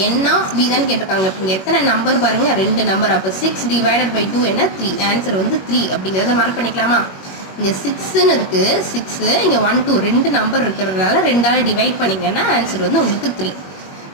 n of b தான் கேட்டிருக்காங்க. இப்போ இங்கே எத்தனை நம்பர் பாருங்கள், 2 நம்பர். அப்போ 6 divided by 2 என்ன, 3. ஆன்சர் வந்து 3 அப்படிங்கிறத மார்க் பண்ணிக்கலாமா. இங்கே 6ன்னு இருக்குது, 6, இங்கே 1 2 2 நம்பர் இருக்கிறதுனால 2ஆல் டிவைட் பண்ணிங்கன்னா ஆன்சர் வந்து உங்களுக்கு 3.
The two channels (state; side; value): late; right; 21 ms